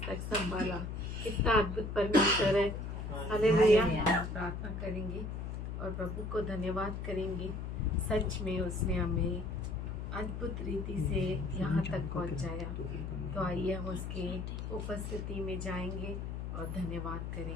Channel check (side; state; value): left; noise; hum, 5 dB below the sound